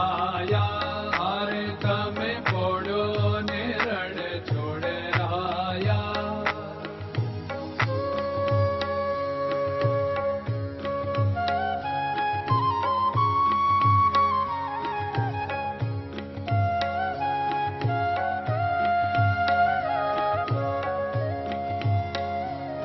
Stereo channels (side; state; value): both; identical; correlation 1.00